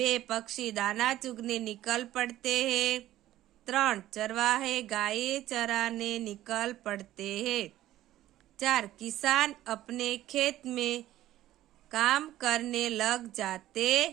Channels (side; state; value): left; quieter; 14.1 dB